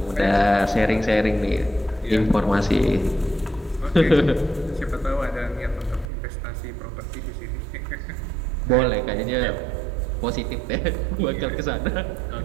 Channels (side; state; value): left; drops out; at 6.1 s